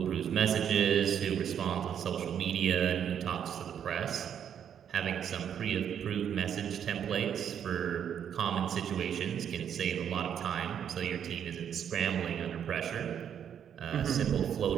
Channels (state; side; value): quieter; left; 8.7 dB